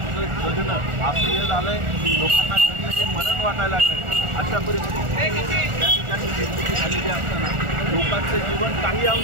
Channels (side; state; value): left; late; 1.4 ms